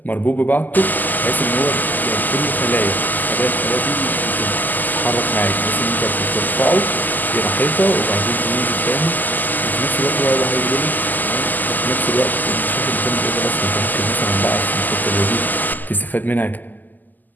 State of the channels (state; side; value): late; right; 0.085 ms